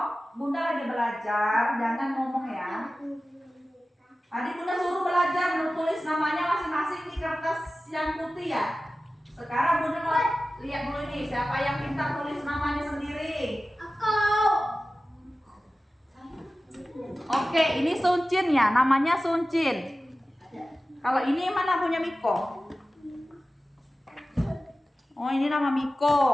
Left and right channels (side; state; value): both; normal; correlation 0.96